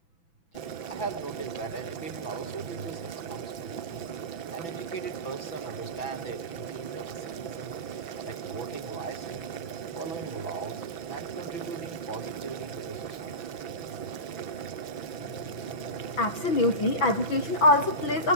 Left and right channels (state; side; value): late; right; 6.0 ms